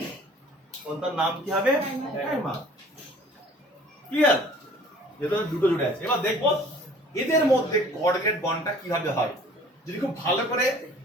তার নাম কি হবে? ডাইমার। ক্লিয়ার? যেহেতু দুটো জুড়ে আছে, এবার দেখবো এদের মধ্যে কোঅর্ডিনেট বন্ডটা কিভাবে হয়। যদি খুব ভালো করে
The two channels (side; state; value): both; normal; correlation 0.50